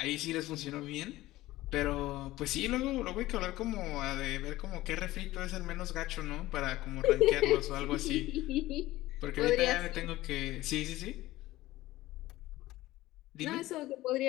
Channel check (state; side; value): quieter; right; 17.0 dB